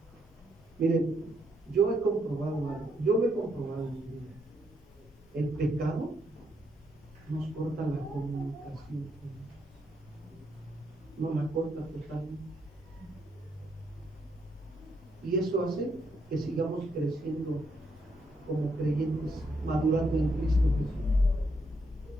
Miren, yo he comprobado algo. Yo lo he comprobado en mi vida. El pecado nos corta la comunicación con Dios. Nos la corta totalmente. Y eso hace que sigamos creciendo como creyentes, madurando en Cristo Jesús.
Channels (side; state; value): both; normal; correlation 0.76